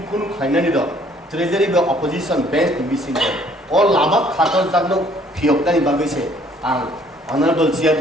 kun khainani do treasury be opposition bench ni bising all lama khator jagno phiokdani bagai se ang honorable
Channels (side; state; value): both; normal; correlation 0.60